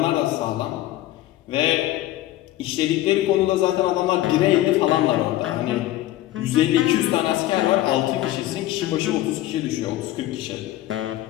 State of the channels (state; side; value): quieter; right; 15.0 dB